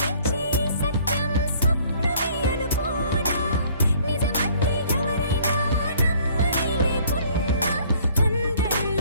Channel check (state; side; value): inverted; both; correlation -0.57